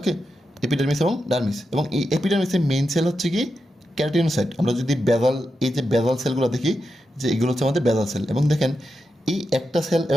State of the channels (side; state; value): both; normal; correlation 0.88